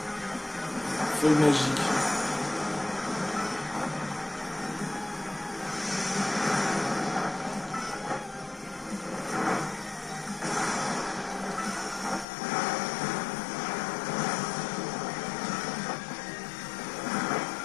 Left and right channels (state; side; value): drops out; right; at 12.2 s